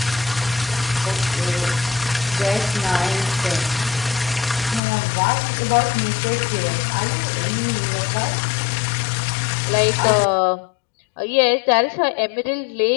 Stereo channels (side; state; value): right; drops out; at 4.8 s